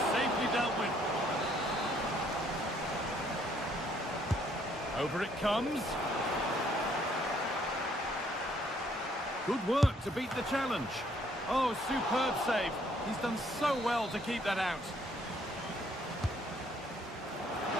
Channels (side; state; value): both; normal; correlation 0.66